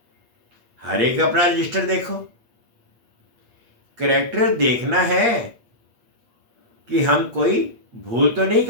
हर एक अपना रजिस्टर देखो। कैरेक्टर देखना है कि हम कोई भूल तो नहीं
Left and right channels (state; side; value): late; left; 8.5 ms